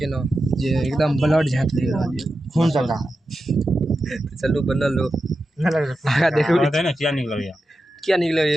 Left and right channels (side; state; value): both; normal; correlation 0.90